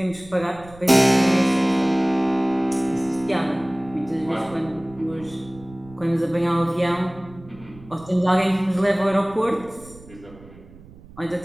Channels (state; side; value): noise; right; rumble, 21 dB below the sound